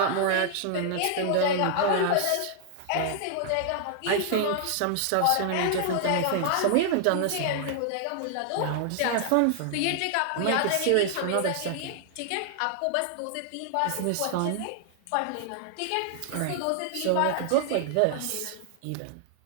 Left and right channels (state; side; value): different; both; correlation -0.01